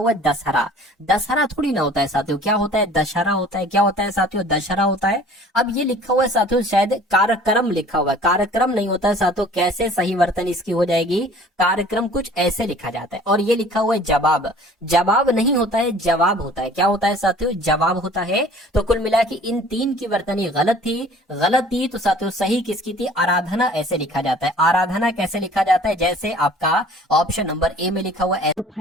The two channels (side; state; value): both; normal; correlation 0.49